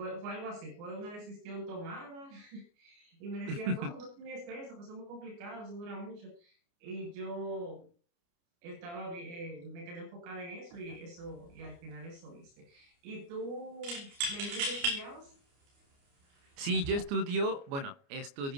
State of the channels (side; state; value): left; late; 29 ms